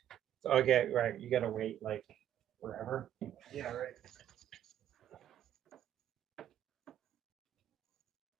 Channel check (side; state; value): left; quieter; 10.9 dB